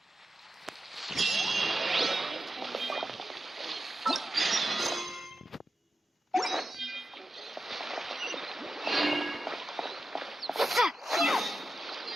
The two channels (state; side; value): normal; both; correlation 0.91